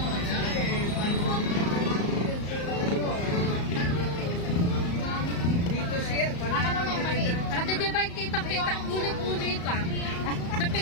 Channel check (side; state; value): right; late; 34 ms